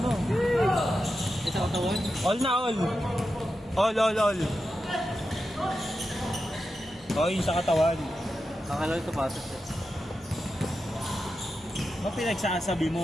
Isa katawan? All na all. All. Oh, yung sa katawan. Akala ko sapatos eh. Ano pinagsasabi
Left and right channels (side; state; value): both; normal; correlation 0.90